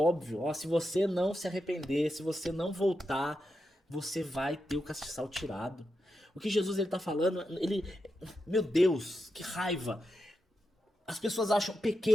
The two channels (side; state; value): both; normal; correlation 0.87